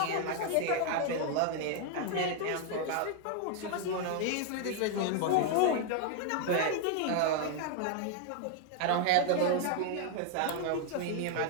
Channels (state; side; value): different; both; correlation 0.00